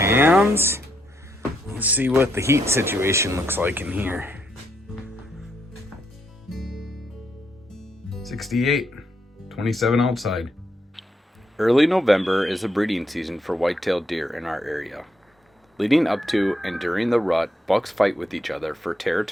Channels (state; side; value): normal; both; correlation 0.77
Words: Let's see what the heat situation looks like in here. 68, 27 outside. Early November is the breeding season for white-tailed deer in our area. Leading up to and during the rut, bucks fight with each other for